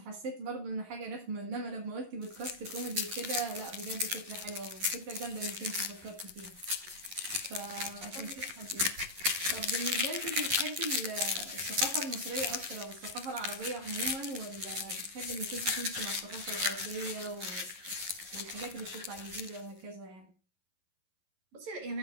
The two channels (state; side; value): late; left; 11 ms